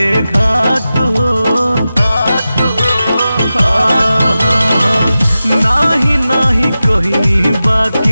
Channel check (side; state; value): both; inverted; correlation -0.94